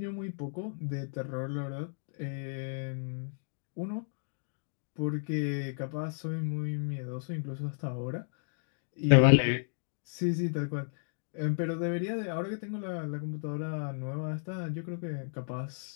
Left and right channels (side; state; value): right; silent; digital silence